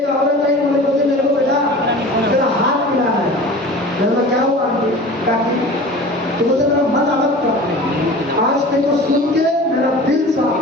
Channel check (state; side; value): normal; both; correlation 0.39